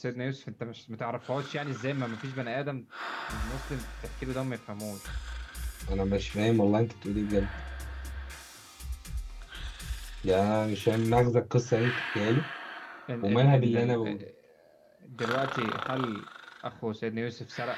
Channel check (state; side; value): identical; both; correlation 1.00